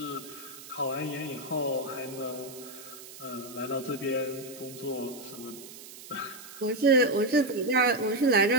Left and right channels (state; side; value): noise; right; hiss, 15 dB below the sound